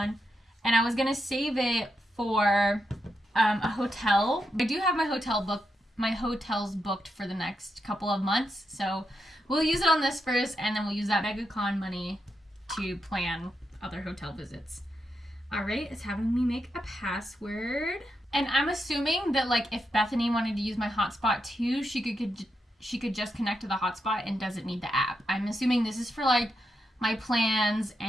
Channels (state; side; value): normal; both; correlation 0.84